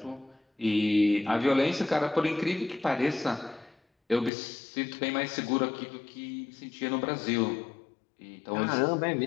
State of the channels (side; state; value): right; drops out; at 4.3 s